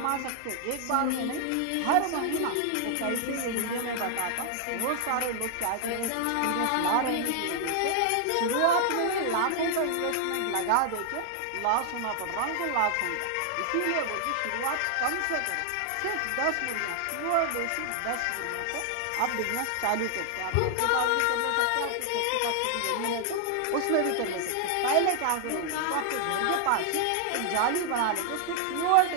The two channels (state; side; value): different; both; correlation 0.00